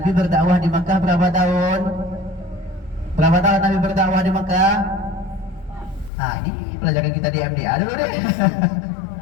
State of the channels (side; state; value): right; drops out; at 6.1 s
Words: berdakwah di Makkah berapa tahun? Berapa tahun Nabi berdakwah di Makkah? Ini pelajaran kita di MDA dulu deh.